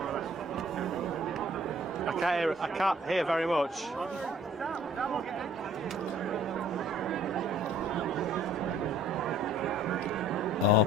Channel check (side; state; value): both; normal; correlation 0.56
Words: I can't hear very much. Oh,